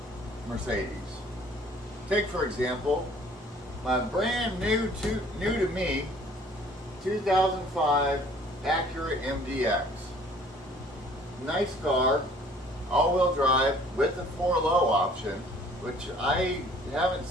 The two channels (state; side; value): normal; both; correlation 0.54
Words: Mercedes. Take, for example, my brand new to me 2005 Acura MDX. Nice car. All-wheel drive with the 4-low option, which I haven't